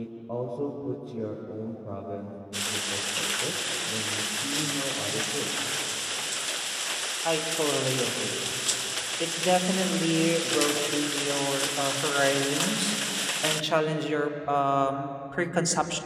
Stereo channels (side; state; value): both; identical; correlation 1.00